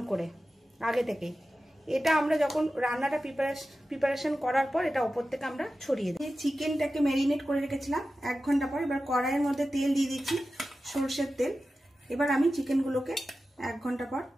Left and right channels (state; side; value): normal; both; correlation 0.94